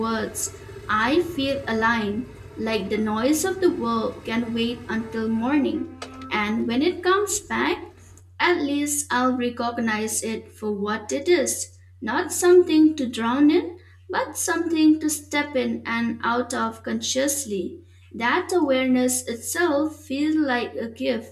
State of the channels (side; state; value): both; identical; correlation 1.00